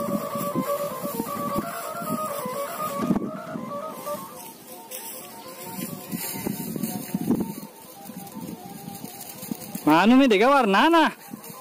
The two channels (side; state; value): both; identical; correlation 1.00